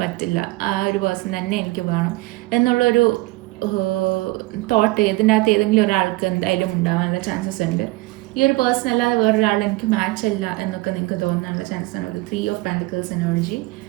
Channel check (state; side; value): quieter; left; 20.8 dB